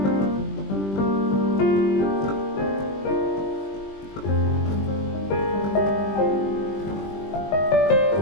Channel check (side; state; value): right; late; 20 ms